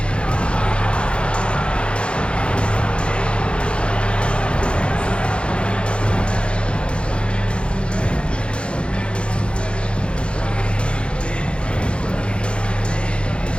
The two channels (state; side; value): late; right; 0.057 ms